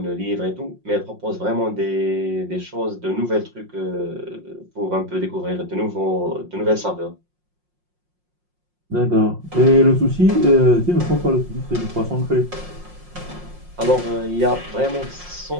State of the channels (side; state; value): left; late; 5.6 ms